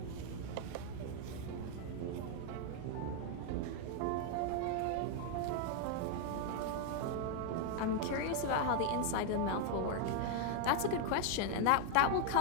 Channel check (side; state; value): both; different; correlation 0.00